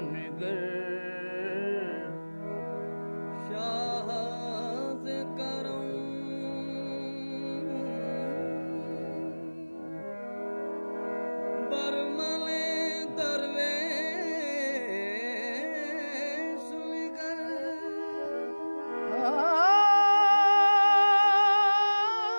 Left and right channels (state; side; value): inverted; both; correlation -1.00